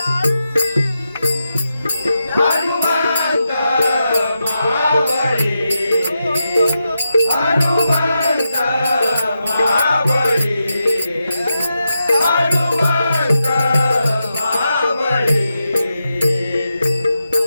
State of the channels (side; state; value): both; inverted; correlation -0.88